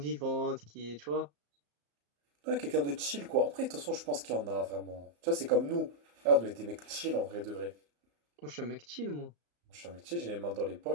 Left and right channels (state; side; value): late; left; 34 ms